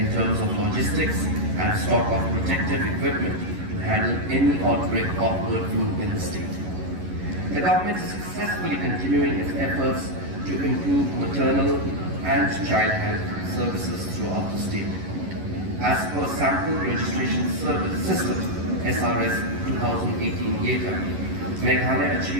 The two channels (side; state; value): left; late; 11 ms